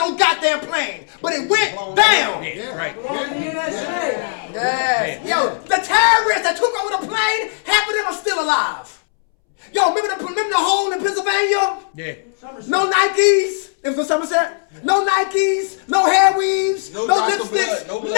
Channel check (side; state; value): right; silent; 65 dB below the other